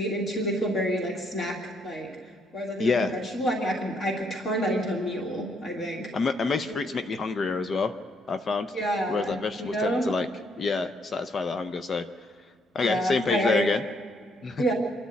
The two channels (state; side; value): normal; both; correlation 0.71